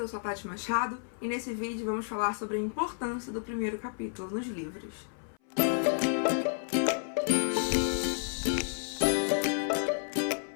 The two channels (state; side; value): silent; right; 57 dB below the other